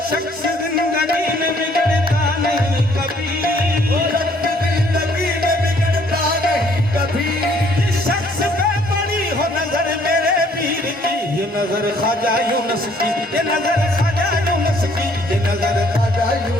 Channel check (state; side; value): normal; both; correlation 0.62